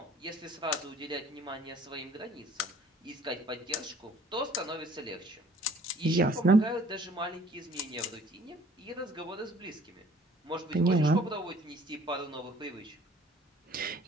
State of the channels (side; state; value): both; normal; correlation 0.54